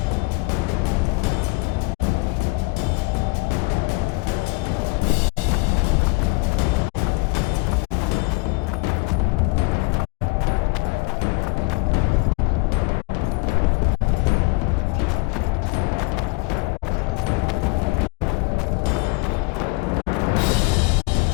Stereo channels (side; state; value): right; quieter; 27.2 dB